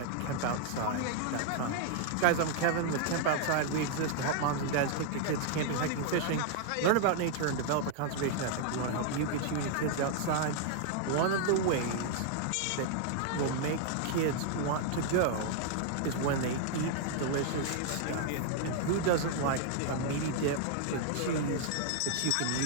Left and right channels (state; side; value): different; both; correlation -0.01